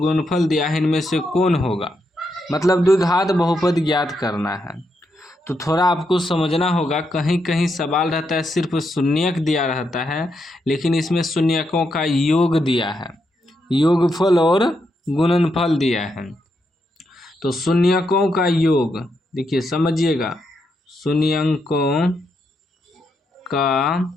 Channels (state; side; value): normal; both; correlation 0.81